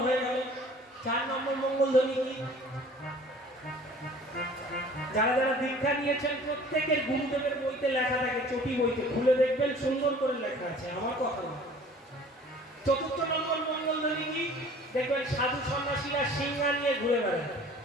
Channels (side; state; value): both; normal; correlation 0.49